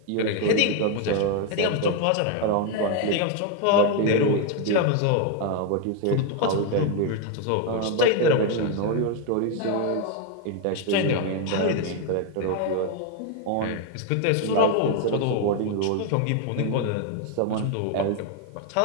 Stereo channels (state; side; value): different; both; correlation 0.01